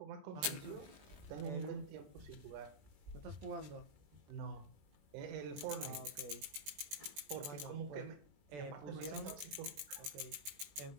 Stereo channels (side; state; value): left; late; 20 ms